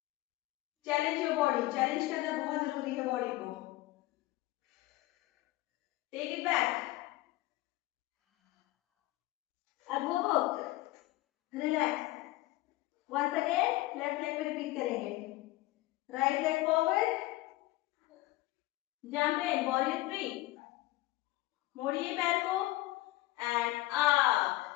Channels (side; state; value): right; quieter; 18.2 dB